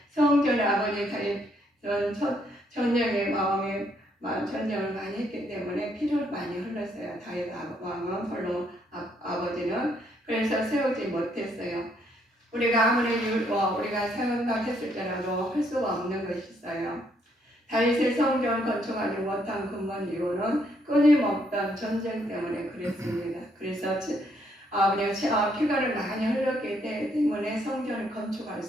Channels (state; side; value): normal; both; correlation 0.71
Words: 성전에 아버지 전쟁의 전쟁을 많이 했기 때문에 피를 많이 흘렸어요. 다윗 왕은 별로 아버지는 그래서 세우지 못했어요. 우리가 아무리 우리가 생각했을때라도 할 수가 없는 것이 있어요. 다윗의 성전을 건축하지 못한 근본 이유는 끊임없던 전쟁 때문에 그랬습니다. 그래서 피가를 많이 흘렸기 때문에 성전을 건축할